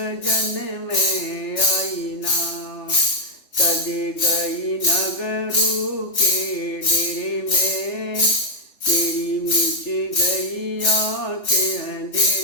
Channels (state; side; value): late; right; 3.3 ms